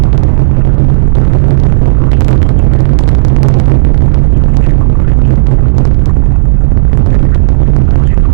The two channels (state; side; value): silent; left; 62 dB below the other